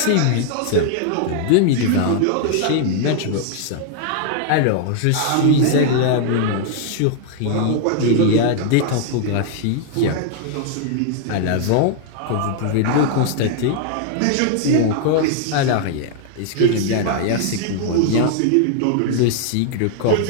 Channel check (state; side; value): different; both; correlation 0.00